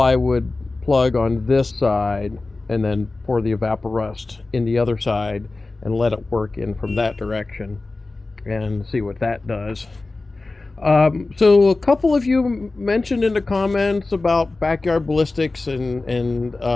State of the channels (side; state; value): right; quieter; 3.4 dB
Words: plug on this side and then pour the Evaporust in the other side and let it work in from that direction and see what that does. So a couple of you mentioned in the comments about backyard ballistics and